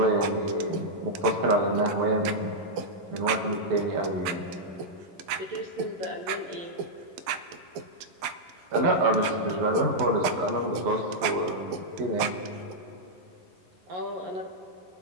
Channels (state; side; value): late; left; 12 ms